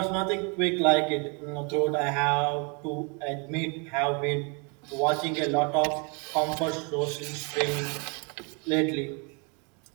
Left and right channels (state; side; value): quieter; left; 34.0 dB